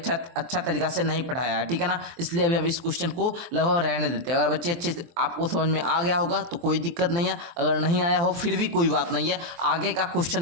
तरीका से नहीं पढ़ाया है, ठीक है ना, इसलिए अभी हम इस क्वेश्चन को लगभग रहने देते हैं। अगर बच्चे अच्छे से आपको समझ में आ गया होगा तो कोई दिक्कत नहीं है, अगर नहीं आया हो फिर भी कोई बात नहीं है, आगे का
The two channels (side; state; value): left; late; 23 ms